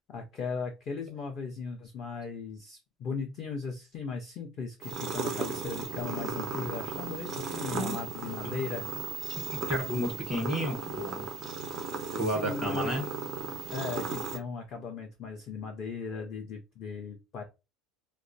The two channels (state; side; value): normal; both; correlation 0.49